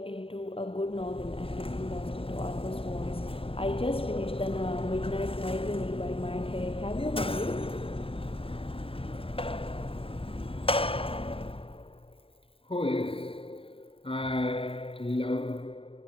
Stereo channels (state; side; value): late; right; 0.27 ms